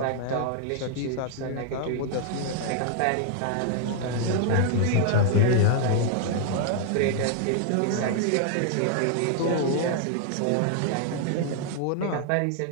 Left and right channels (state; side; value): different; both; correlation 0.00